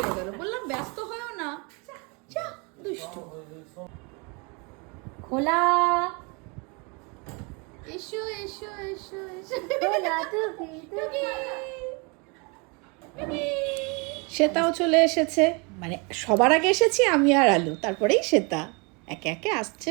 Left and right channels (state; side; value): quieter; left; 31.2 dB